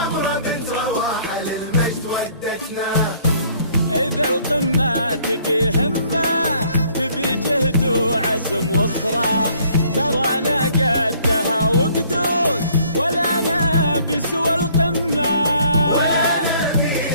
بنت رواحة للمجد ودتنا. إذا القمة تبي همة، تبي جهد وعزم وصرا، ترانا قدها وقدود ولا نبي سوى القمة.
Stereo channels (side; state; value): both; inverted; correlation -0.60